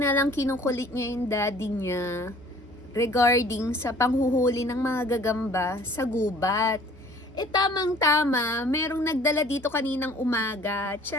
lang kinukulit niya yung daddy niya regarding sa panghuhuli ng mga gagamba sa gubat. Tamang-tama, merong nagdala dito kaninang umaga.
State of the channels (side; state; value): both; normal; correlation 0.52